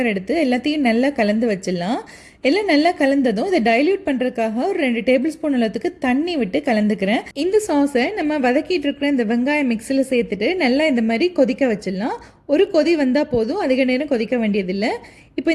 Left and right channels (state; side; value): identical; both; correlation 1.00